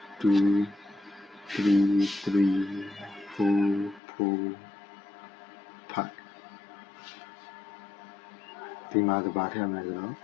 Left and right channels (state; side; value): drops out; right; at 4.0 s